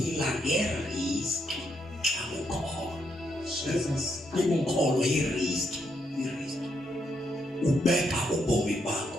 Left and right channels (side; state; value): both; normal; correlation 0.78